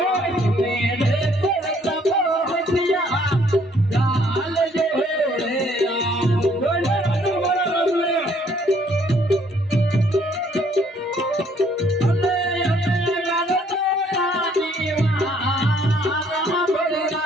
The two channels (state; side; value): normal; both; correlation 0.64